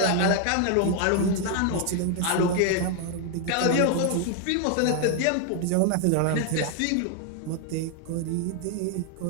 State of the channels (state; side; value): different; both; correlation 0.00